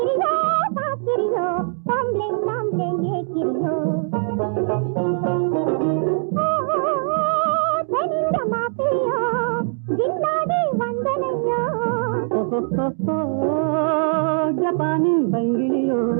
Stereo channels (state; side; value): silent; left; digital silence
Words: பாக்கிரியோ பம்ளே நம்ளே ஏக்கிரியோ தெனிந்த மாப்பிளையோ ஜின்னாடி வந்தனையோ ஜப்பானின் பங்கிலியோ